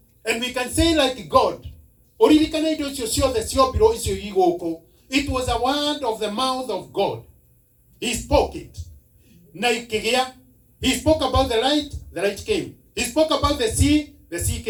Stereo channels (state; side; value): identical; both; correlation 1.00